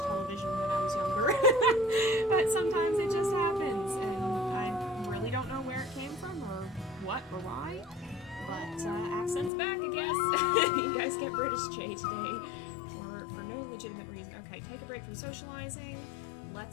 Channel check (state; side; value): drops out; right; at 9.5 s